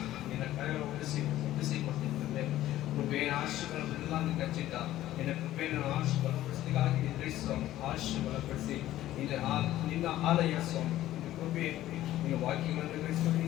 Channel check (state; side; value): quieter; right; 14.2 dB